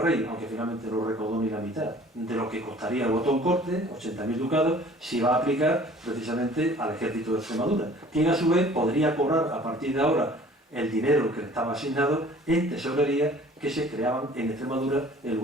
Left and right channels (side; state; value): both; normal; correlation 0.50